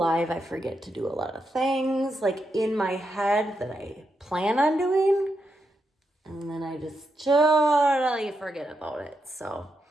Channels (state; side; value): normal; both; correlation 0.84